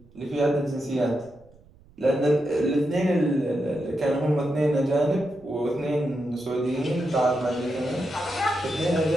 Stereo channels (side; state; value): right; noise; rumble, 27 dB below the sound